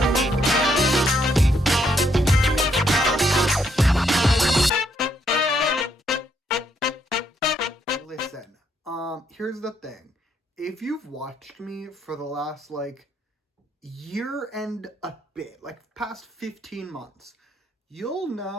Listen, here's the thing. If you've watched me for the last, year and a bit, past 15 months, you'll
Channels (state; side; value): normal; both; correlation 0.74